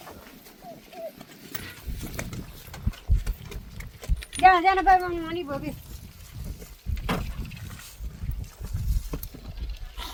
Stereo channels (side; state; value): both; identical; correlation 1.00